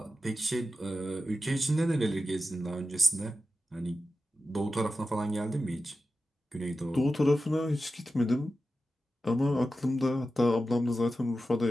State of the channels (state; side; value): normal; both; correlation 0.92